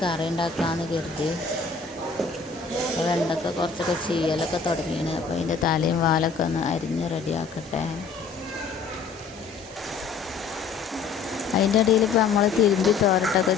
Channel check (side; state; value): right; quieter; 5.2 dB